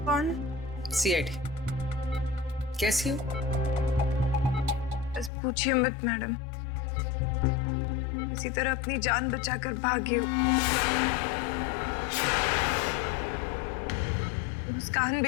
कौन? सीआईडी। कैसी हो? बस पूछिए मत मैडम, इसी तरह अपनी जान बचाकर भागी हूँ। मुस्कान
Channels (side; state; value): right; drops out; at 5.3 s